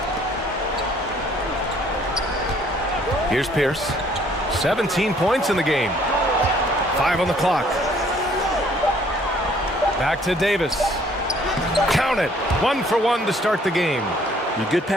Here's Pierce. 17 points in the game. 5 on the clock. Back to Davis. Count it. 1 for 1 to start the game. Good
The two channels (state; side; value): normal; both; correlation 0.61